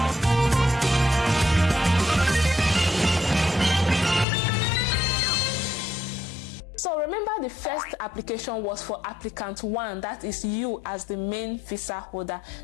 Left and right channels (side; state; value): right; drops out; at 4.2 s